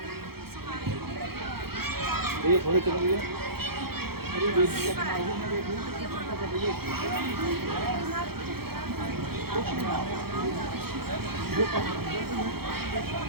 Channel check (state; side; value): late; left; 0.95 ms